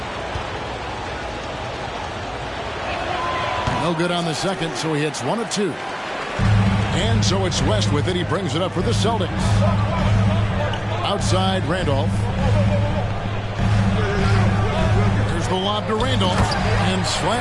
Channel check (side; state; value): both; identical; correlation 1.00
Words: No good on the second, so he hits 1 of 2. And so it's West with it. He brings it up for the Celtics. Outside, Randolph. The lob to Randolph, and